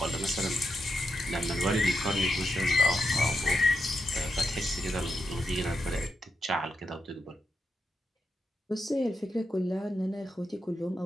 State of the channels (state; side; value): normal; both; correlation 0.85